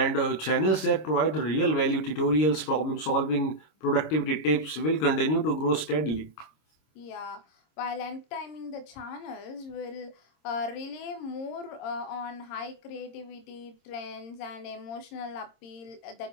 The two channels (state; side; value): late; right; 26 ms